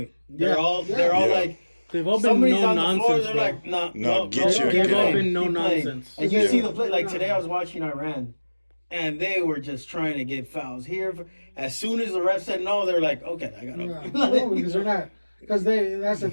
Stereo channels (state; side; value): inverted; both; correlation -1.00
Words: They're Yeah. all Yeah. like they've all been somebody's no on the floor. nonsense. They're bro. like, no, No, get your- They've all play. been no Keep playing. nonsense. And you Yeah. see the play. Like today, I was watching Iran, and they were just trying to get fouls here. As soon as the ref said no, they're like, okay, I got Yeah. to. No, because they're not. Because that's the